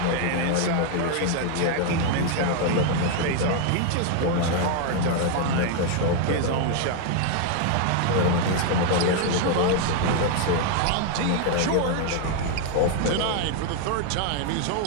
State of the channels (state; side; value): different; both; correlation 0.01